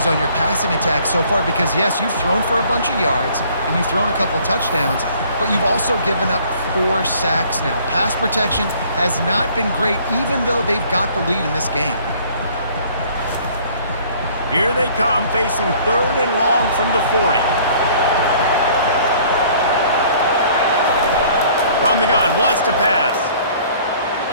on your passing attack so far because, yes, you've thrown for a bunch of yards and you've thrown a couple touchdowns, but you've also given up 4 sacks now. Pass protection has not been great, even though they've got the lead in this game. Here they come, facing third and long from the 40. From the gun, wants to pass.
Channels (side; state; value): both; inverted; correlation -0.55